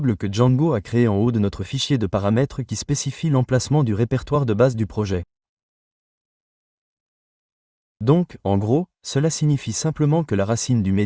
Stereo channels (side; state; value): both; identical; correlation 1.00